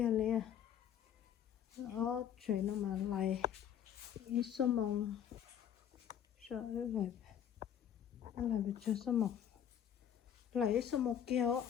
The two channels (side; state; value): right; quieter; 9.5 dB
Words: lên đó chơi nó mà lại ít số mong sợ lại bị chơi số mong lại ít số mong kia